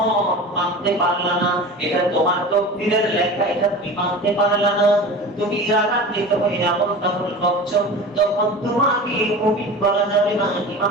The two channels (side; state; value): both; normal; correlation 0.34